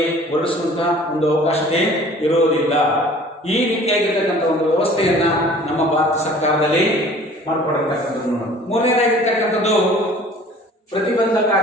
ಹೊರಡಿಸುವಂತಹ ಒಂದು ಅವಕಾಶತೆ ಇರುವುದಿಲ್ಲ. ಈ ರೀತಿಯಾಗಿರ್ತಕ್ಕಂಥ ಒಂದು ವ್ಯವಸ್ಥೆಯನ್ನ ನಮ್ಮ ಭಾರತ ಸರ್ಕಾರದಲ್ಲಿ ಮಾಡಿಕೊಡಿರ್ತಕ್ಕಂಥದ್ದು. ಮೂರನೇದಾಗಿರ್ತಕ್ಕಂಥದ್ದು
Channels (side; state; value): both; normal; correlation 0.49